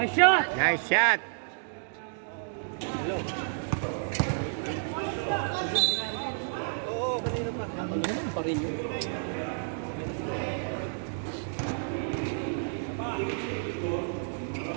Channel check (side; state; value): left; silent; digital silence